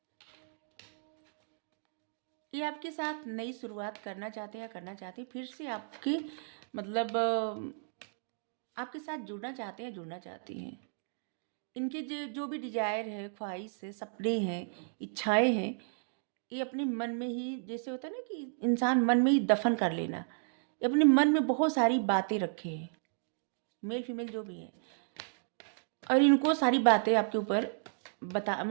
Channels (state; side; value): silent; left; digital silence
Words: ये आपके साथ नई शुरुआत करना चाहते हैं या करना चाहते हैं, फिर से आपके मतलब आपके साथ जुड़ना चाहते हैं, जुड़ना चाहती हैं। इनके जो भी डिजायर है, ख्वाहिश है, सपने हैं, इच्छाएं हैं, ये अपने मन में ही, जैसे होता है ना कि इंसान मन में ही दफन कर लेना, ये अपने मन में बहुत सारी बातें रखे हैं, मेल फीमेल जो भी है, और इनको सारी बातें आपके ऊपर बता